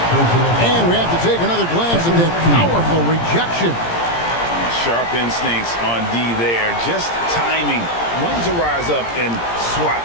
And we have to take another glance at that powerful rejection. Sharp instincts on D there. Just timing when to rise up and swat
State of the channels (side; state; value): right; late; 17 ms